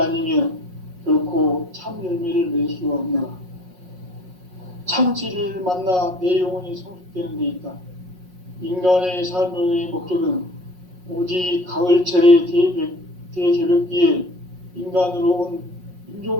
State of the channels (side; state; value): left; late; 5.5 ms